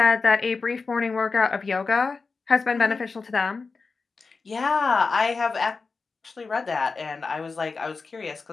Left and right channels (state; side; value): quieter; right; 4.4 dB